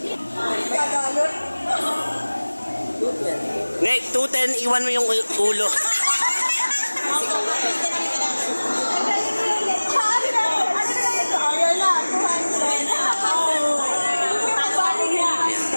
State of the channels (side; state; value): both; inverted; correlation -1.00